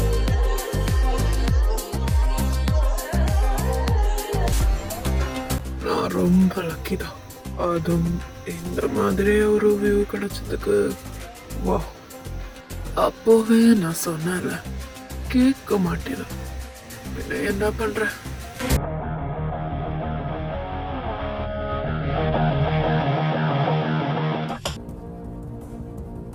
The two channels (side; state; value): both; identical; correlation 1.00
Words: நான் ரொம்ப லக்கி தான். அதுவும் இந்த மாதிரி ஒரு வியூ கிடைச்சதுக்கு வா. அப்போவே நான் சொன்னேன்ல, கேட்க மாட்டேன். பின்ன என்ன பண்ற?